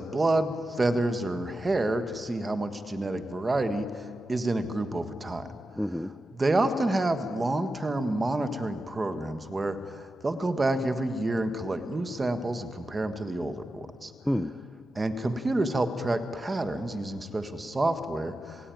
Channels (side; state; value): both; normal; correlation 0.91